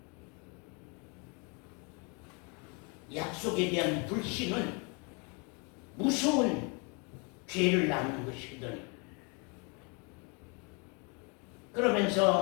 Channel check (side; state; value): right; quieter; 33.2 dB